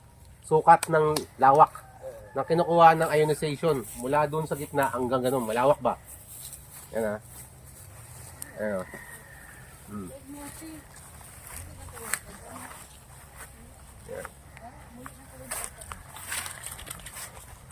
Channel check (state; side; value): identical; both; correlation 1.00